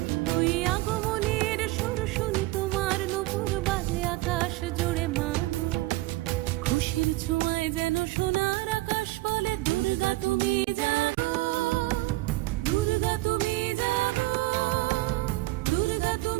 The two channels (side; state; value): left; quieter; 19.4 dB